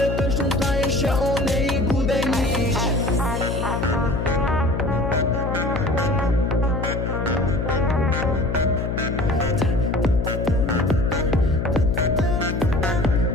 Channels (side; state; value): left; noise; hum, 2 dB below the sound